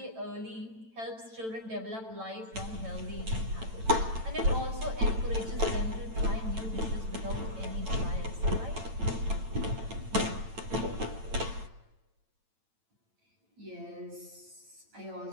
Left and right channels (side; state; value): left; late; 9.0 ms